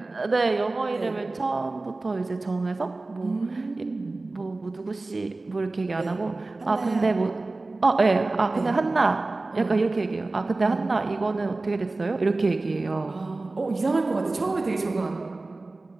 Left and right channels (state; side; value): quieter; left; 3.2 dB